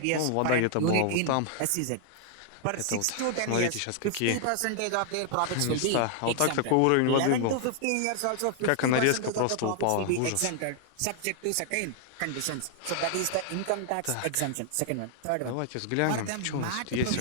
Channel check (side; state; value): both; different; correlation 0.00